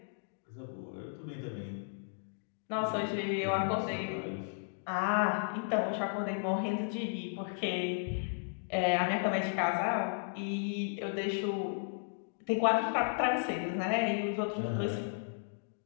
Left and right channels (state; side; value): silent; right; digital silence